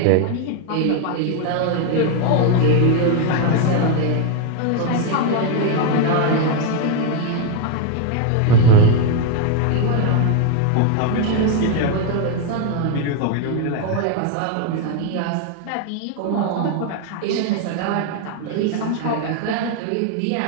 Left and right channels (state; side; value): different; both; correlation 0.01